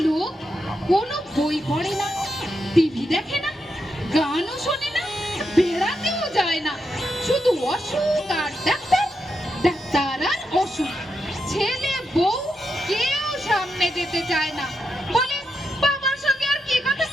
লোক কোনো বই পড়ে না, টিভি দেখে না, গানও শোনে না, বেড়াতেও যায় না, শুধু অসুখ আর ডাক্তার, ডাক্তার আর অসুখ। ছেলে বউ কেউ সামনে যেতে চায় না, বলে বাবার সঙ্গে আর কি কথা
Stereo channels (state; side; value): normal; both; correlation 0.85